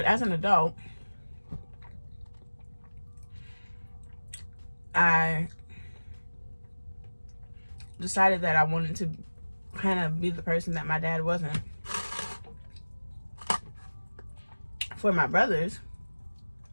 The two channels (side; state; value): both; inverted; correlation -1.00